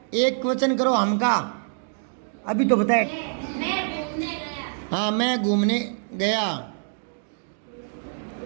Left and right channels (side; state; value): left; silent; digital silence